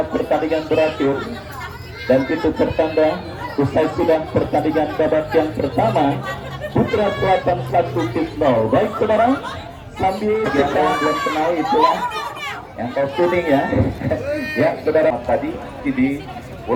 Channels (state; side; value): identical; both; correlation 1.00